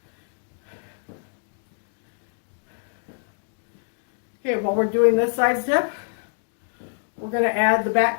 Okay, while we're doing this side step, we're going to add the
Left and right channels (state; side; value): silent; right; digital silence